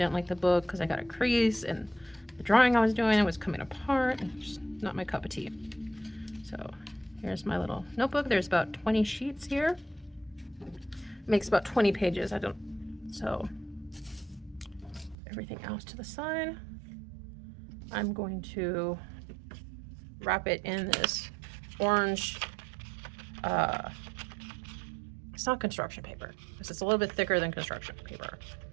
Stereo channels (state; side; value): drops out; left; at 15.2 s